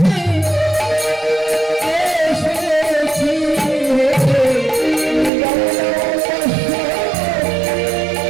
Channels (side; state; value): left; drops out; at 5.3 s